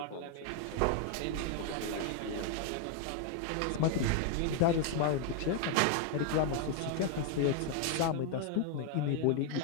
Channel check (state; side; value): different; both; correlation 0.00